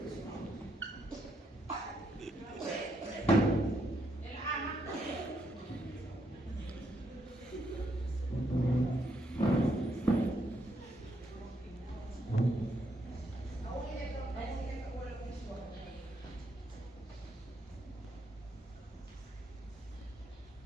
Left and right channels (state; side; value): normal; both; correlation 0.76